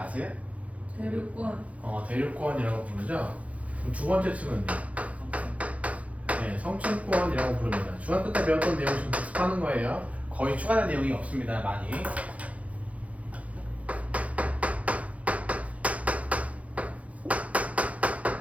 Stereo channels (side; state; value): left; late; 0.066 ms